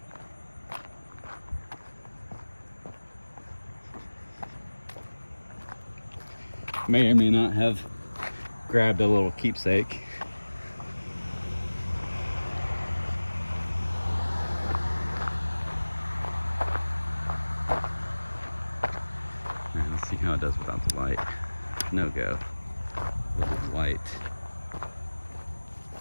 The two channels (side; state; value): both; inverted; correlation -1.00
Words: May or may not have grabbed a little keepsake. Right, let's see how it does without the light. No go. With the light.